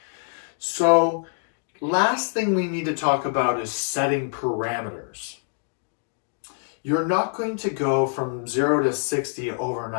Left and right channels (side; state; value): right; silent; digital silence